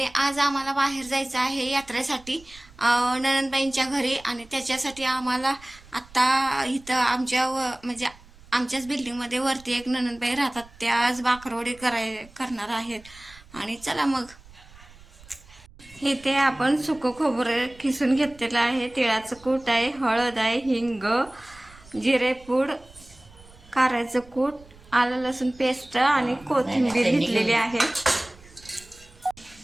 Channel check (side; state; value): right; noise; rumble, 24 dB below the sound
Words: आज आम्हाला बाहेर जायचं आहे यात्रेसाठी ननंदबाईंच्या घरी आणि त्याच्यासाठी आम्हाला आत्ता इथं म्हणजे आमच्याच बिल्डिंगमध्ये वरती एक ननंदबाई राहतात, त्या आज बाकरवडी करणार आहेत. आणि चला मग. हे ते आपण सुकं खोबरं खिसून घेतलेलं आहे, तिळाचं कूट आहे, हळद आहे, हिंग, जिरेपूड, कारळ्याचं कूट, आलं लसूण पेस्ट आणि कोथिंबीर घेतलेली आहे.